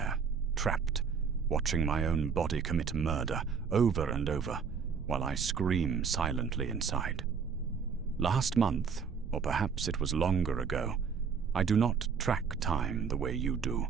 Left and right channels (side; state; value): left; quieter; 6.1 dB